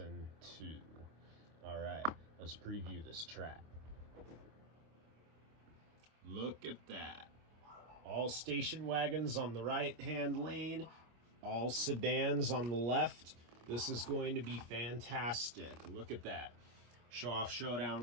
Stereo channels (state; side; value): late; left; 25 ms